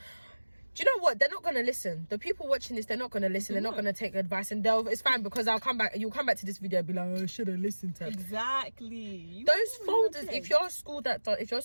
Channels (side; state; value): both; inverted; correlation -1.00